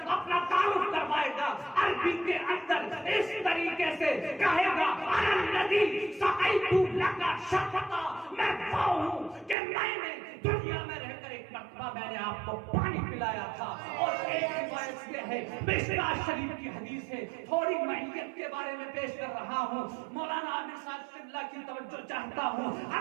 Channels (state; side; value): drops out; left; at 9.6 s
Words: اپنا تعارف کروائے گا عربی کے اندر اس طریقے سے کہے گا، انا الذی سقیت لک شربتا، میں وہ ہوں کہ میں نے دنیا میں رہ کر ایک مرتبہ میں نے آپ کو پانی پلایا تھا۔ اور ایک روایت یہ ہے، مشکوٰۃ شریف کی حدیث ہے، تھوڑی معیت کے بارے میں پیش کر رہا ہوں، مولانا عامر صاحب قبلہ کی توجہ چاہتا ہوں۔